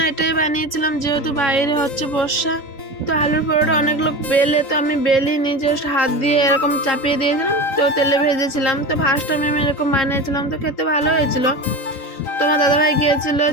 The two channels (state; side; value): late; right; 3.9 ms